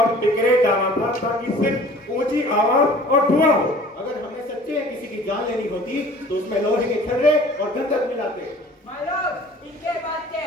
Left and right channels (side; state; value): both; normal; correlation 0.48